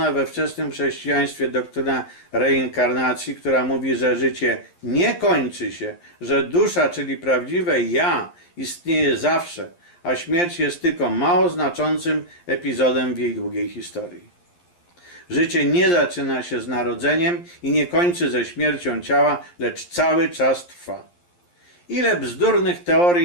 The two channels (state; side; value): late; right; 11 ms